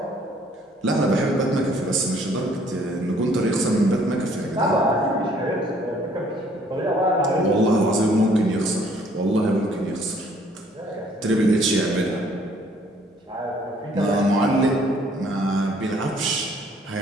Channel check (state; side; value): normal; both; correlation 0.61